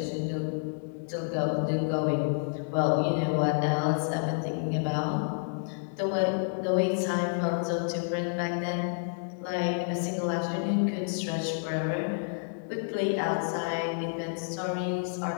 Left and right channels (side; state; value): right; silent; digital silence